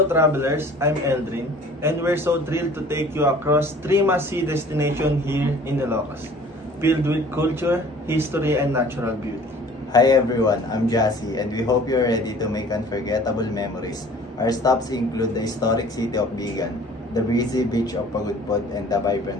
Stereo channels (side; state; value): both; normal; correlation 0.49